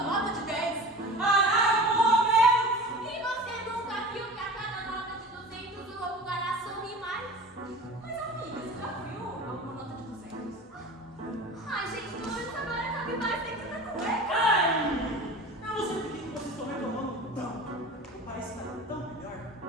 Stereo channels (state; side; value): normal; both; correlation 0.36